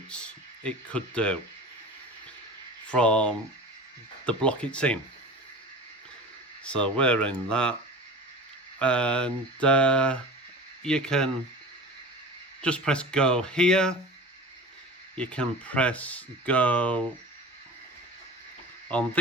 it could do from the block it's in. So we're in that, and you can just press go here. You can press go on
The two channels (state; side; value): normal; both; correlation 0.35